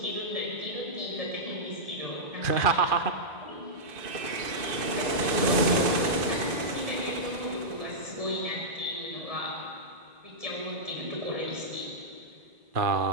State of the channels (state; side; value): late; left; 2.5 ms